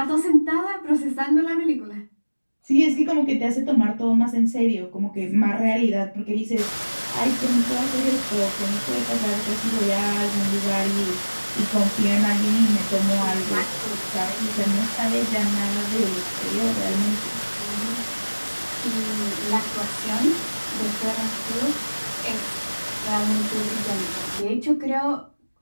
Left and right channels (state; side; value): inverted; both; correlation -1.00